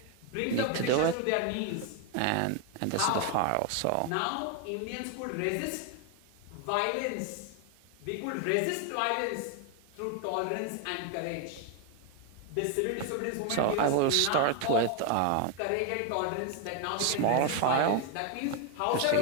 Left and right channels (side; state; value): both; different; correlation 0.01